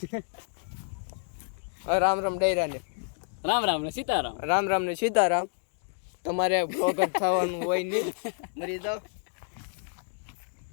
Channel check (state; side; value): silent; right; digital silence